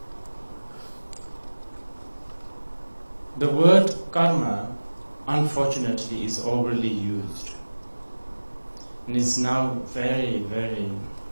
The word karma, unfortunately, is overly used, and it's now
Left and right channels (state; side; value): inverted; both; correlation -1.00